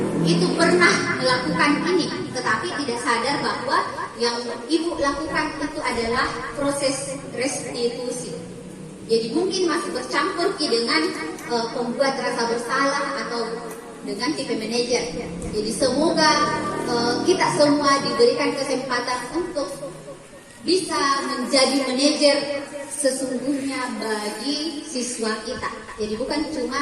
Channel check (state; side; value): identical; both; correlation 1.00